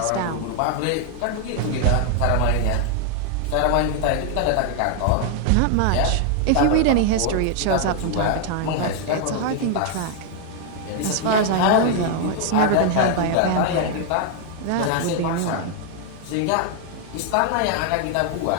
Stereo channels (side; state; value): both; different; correlation 0.00